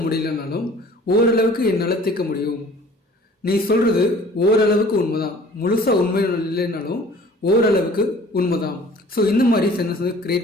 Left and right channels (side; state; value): both; normal; correlation 0.50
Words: முடியலனாலும் ஓரளவுக்கு என்னால் தீர்க்க முடியும். நீ சொல்கிறது ஓரளவுக்கு உண்மைதான், முழுசாக உண்மை இல்லைனாலும் ஓரளவுக்கு உண்மைதான். ஸோ இந்த மாதிரி சென்டென்ஸ் வந்து